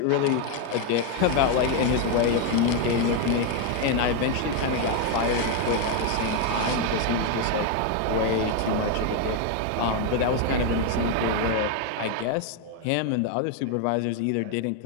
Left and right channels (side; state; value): both; different; correlation 0.01